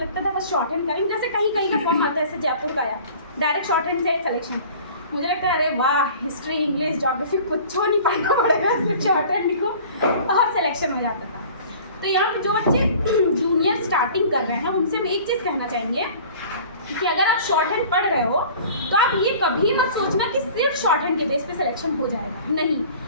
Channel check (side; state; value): both; inverted; correlation -0.46